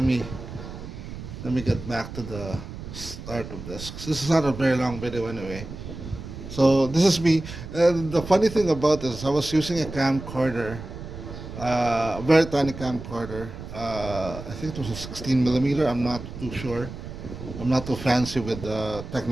me get back to the start of this. 'Cause this is not a very long video anyway. So this is me. And the funny thing about this, I was using a camcorder, a very tiny camcorder. I think it was a 16 millimeter. I'm not too sure. I'm not too fancy with the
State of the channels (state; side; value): noise; right; rumble, 11 dB below the sound